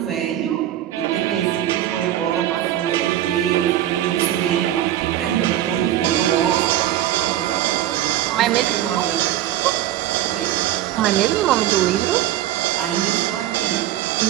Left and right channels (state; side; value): quieter; left; 12.7 dB